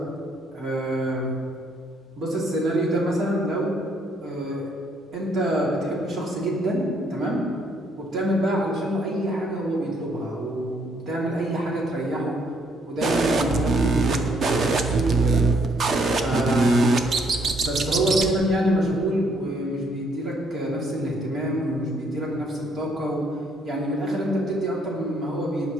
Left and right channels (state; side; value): normal; both; correlation 0.68